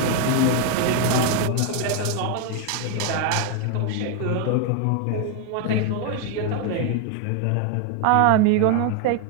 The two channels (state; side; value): different; both; correlation 0.01